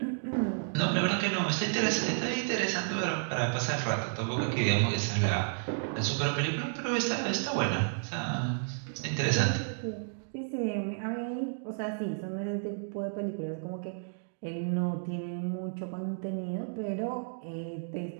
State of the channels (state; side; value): silent; left; digital silence